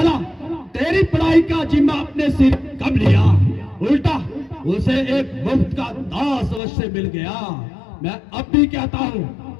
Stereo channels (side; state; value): right; drops out; at 6.6 s